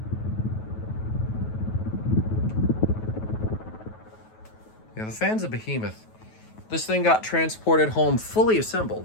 Yeah, the fan's a behemoth. This thing got transported home fully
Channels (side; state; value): right; late; 9.3 ms